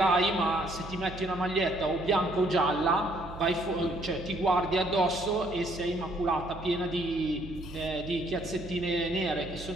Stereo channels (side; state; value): right; noise; hum, 14 dB below the sound